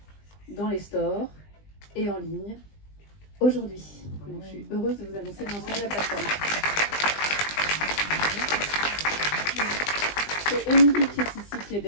dans les stores et en ligne aujourd'hui. Donc, je suis heureuse de vous annoncer le lancement de la plateforme. C'est Émilie qui est ici, qui est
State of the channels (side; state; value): right; late; 20 ms